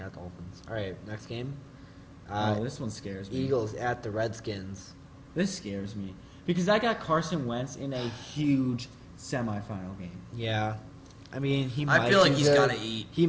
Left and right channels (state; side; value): identical; both; correlation 1.00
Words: Dolphins. All right, next game. This one scares me. Eagles at the Redskins. This scares me because I got Carson Wentz in a huge semifinal game. Yeah. I mean, he I might feel like do he's good. gotta eat. He